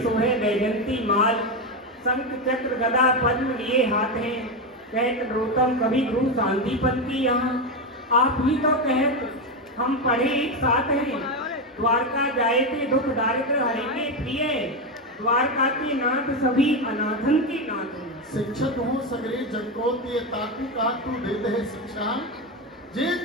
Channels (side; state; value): both; normal; correlation 0.12